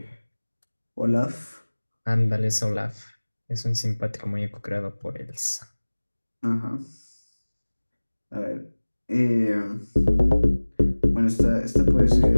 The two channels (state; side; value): inverted; both; correlation -1.00